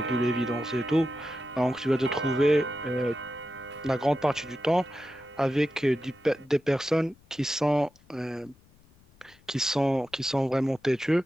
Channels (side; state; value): left; noise; rumble, 29 dB below the sound